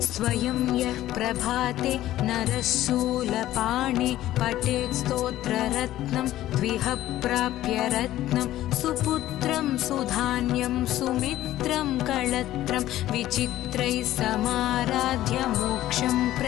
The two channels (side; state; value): right; quieter; 14.2 dB